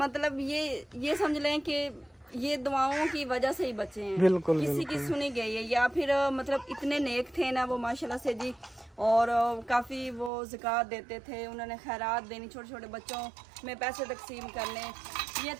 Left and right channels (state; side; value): drops out; left; at 10.3 s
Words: ये समझ लें कि ये दुआओं की वजह से ही बचे हैं। बिल्कुल, किसी की सुनी गई है या फिर मतलब इतने नेक थे ना वो माशाल्लाह से जी। और काफ़ी वो ज़कात देते थे, उन्होंने खैरात देनी, छोटे छोटे बच्चों में पैसे तकसीम करने। ये